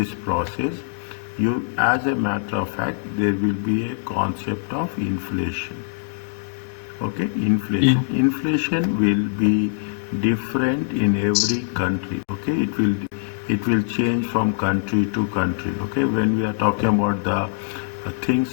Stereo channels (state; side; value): silent; right; digital silence